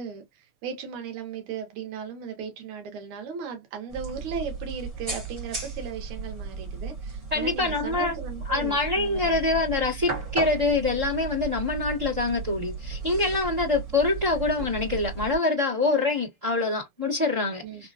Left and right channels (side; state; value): left; late; 6.7 ms